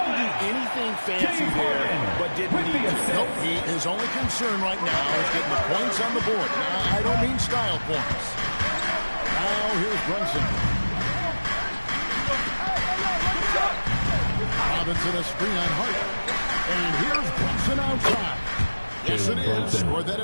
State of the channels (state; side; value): inverted; both; correlation -1.00